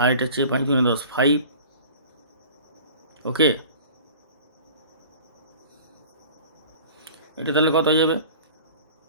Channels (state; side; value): inverted; both; correlation -0.44